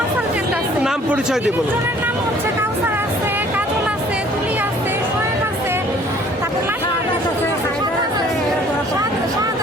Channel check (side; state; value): both; normal; correlation 0.55